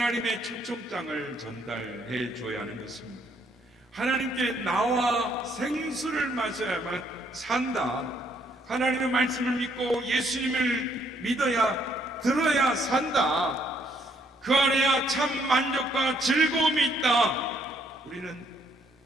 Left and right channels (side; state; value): both; normal; correlation 0.69